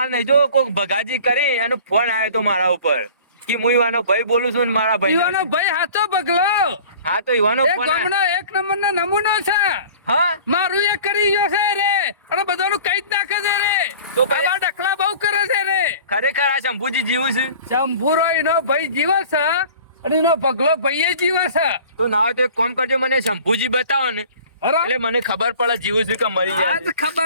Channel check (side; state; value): both; inverted; correlation -0.45